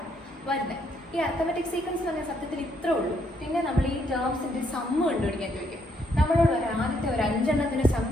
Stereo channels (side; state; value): both; normal; correlation 0.72